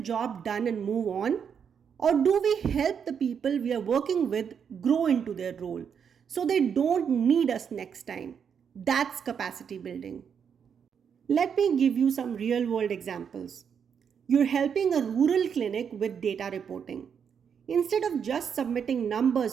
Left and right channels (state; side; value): quieter; left; 7.3 dB